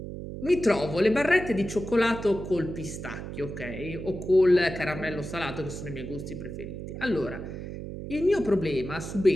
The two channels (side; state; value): right; noise; hum, 8 dB below the sound